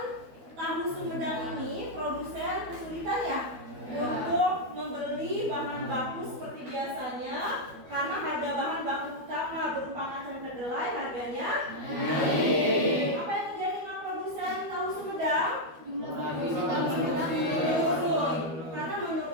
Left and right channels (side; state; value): left; late; 12 ms